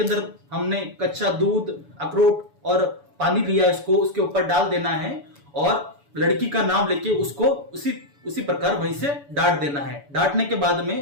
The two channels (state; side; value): late; left; 7.0 ms